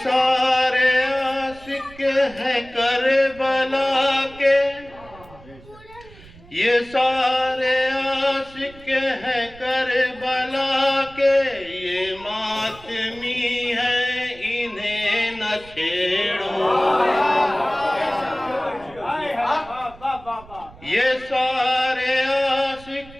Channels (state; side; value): noise; right; rumble, 21 dB below the sound